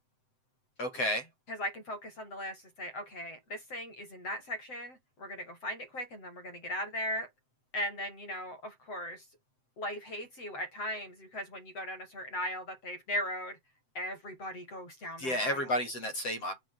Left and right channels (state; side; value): late; right; 7.8 ms